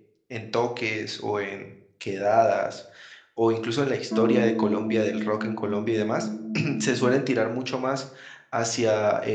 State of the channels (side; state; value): both; identical; correlation 1.00